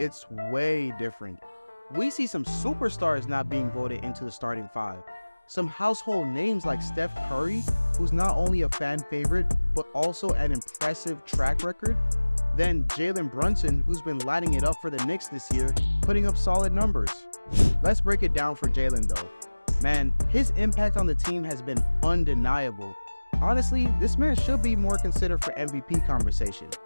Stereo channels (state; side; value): inverted; both; correlation -1.00